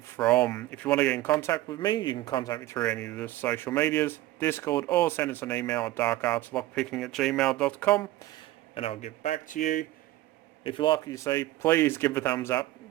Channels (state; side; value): quieter; left; 16.5 dB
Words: from. If you want to get in contact with me, you can contact me through any of the social medias, Discord, or send us an email at darkartslockpicking@gmail.com, and I'll get back to you. If you like what you see, please give a thumbs up,